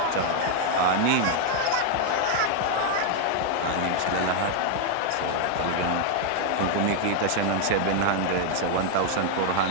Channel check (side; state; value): both; different; correlation 0.00